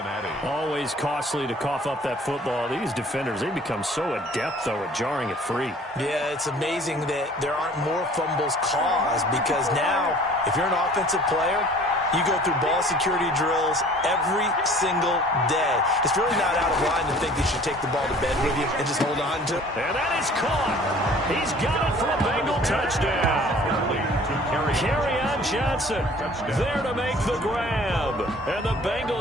Always costly to cough up that football. These defenders, they become so adept, though, at jarring it free. Yeah, it's amazing that there aren't more fumbles caused because now, if you're an offensive player, you go through ball security drills every single day. It's really not out of line to think you should take the ball to bed with you and just hold on to it. And that is caught. He's got it for a Bengal touchdown. Kerryon Johnson there to make the grab. And the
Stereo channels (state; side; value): normal; both; correlation 0.50